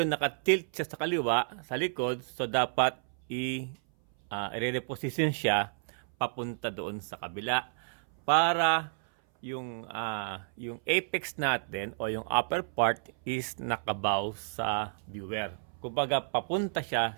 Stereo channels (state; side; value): silent; left; 57 dB below the other